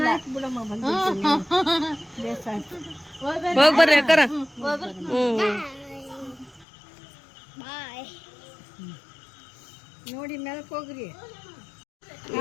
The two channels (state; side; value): drops out; right; at 6.7 s